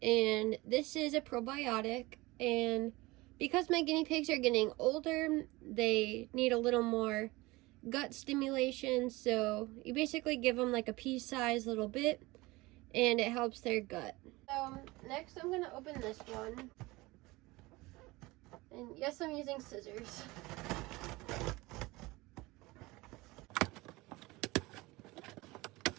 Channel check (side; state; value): left; quieter; 21.5 dB